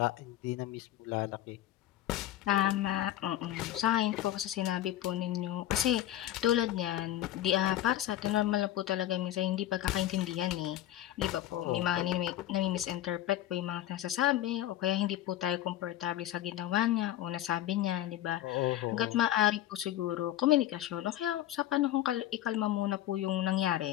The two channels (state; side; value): quieter; right; 13.3 dB